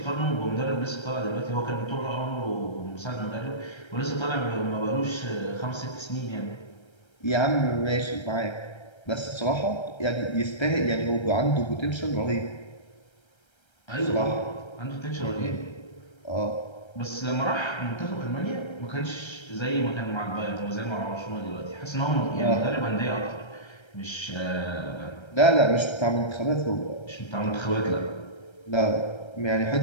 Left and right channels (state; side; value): late; right; 1.3 ms